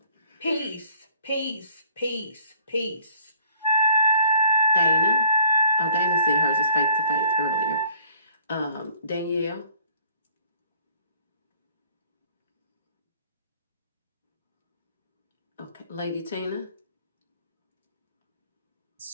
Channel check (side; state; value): both; inverted; correlation -0.56